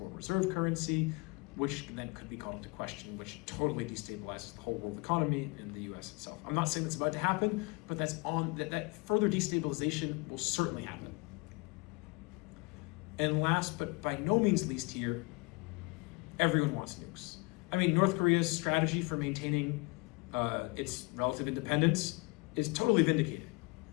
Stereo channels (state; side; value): quieter; right; 28.1 dB